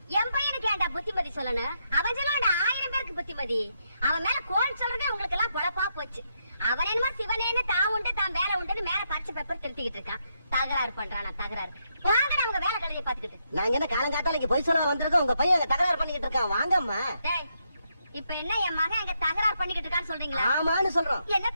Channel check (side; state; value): both; inverted; correlation -0.79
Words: என் பையனுக்கு ஏன்டா புத்திமதி சொல்லணும்? அவன் சொல்லா 1000 பேருக்கு புத்திமதி. அவன் மேல கோல் சொல்றது உங்களுக்கு எல்லாம் பொழப்பா போச்சு. அவன் என்னமோ சிவனேன்னு தான் உண்டு தான் வேலை உண்டுன்னு மேல பச்சை பேப்பர் திருத்திக்கிட்டு இருக்கான். தகராறு பண்றானா தகராறு. வாங்க அவங்க வேலை கடையை பாத்துக்கிட்டு. நாங்க என்ன காலங்காத்தால இங்க போய் சொல்ல வந்திருக்கோம். உங்க பையன் தகராறு பண்ணிக்கிட்டு இருக்கான். வாங்கம்மா. இப்ப என்ன என் மகன் எங்க தகராறு பண்ணிக்கிட்டு இருக்கான்னு சொல்றீங்களா? ஆமான்னு சொல்றோம்.